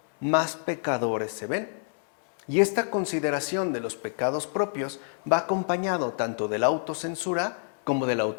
más pecadores se ven. Y esta consideración de los pecados propios va acompañado tanto de la autocensura como de la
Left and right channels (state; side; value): silent; right; 60 dB below the other